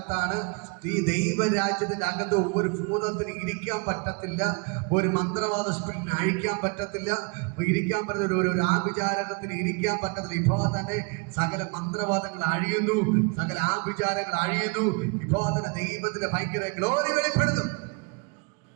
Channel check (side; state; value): left; quieter; 31.5 dB